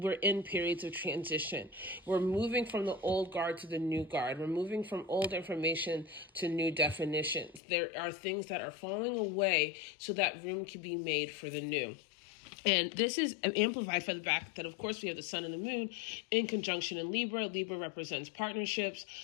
in periods of transition. We're moving from the old guard to the new guard. We're moving from old information to new definitions. There are things that are falling away so that room can be made for the new. And this is amplified by the fact that, of course, we have the sun and the moon in conjunction in Libra. Libra represents partnerships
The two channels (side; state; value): right; drops out; at 7.6 s